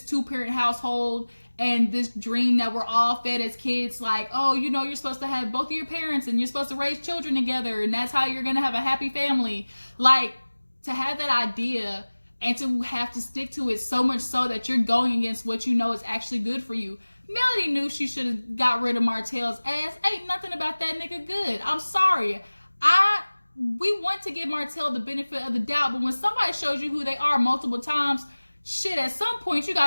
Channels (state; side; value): inverted; both; correlation -1.00